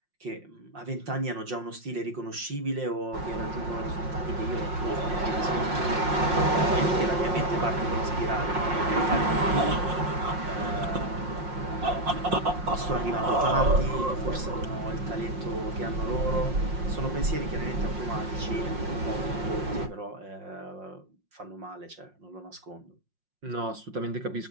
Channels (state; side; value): late; left; 5.6 ms